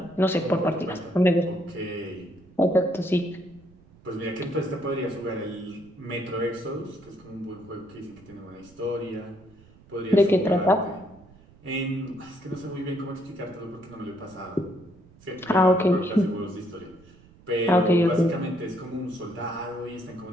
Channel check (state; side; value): noise; right; rumble, 25 dB below the sound